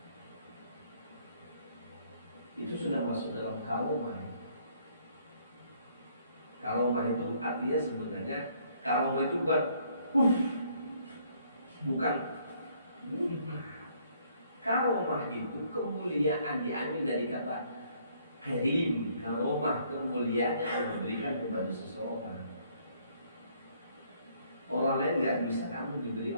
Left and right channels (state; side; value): inverted; both; correlation -0.65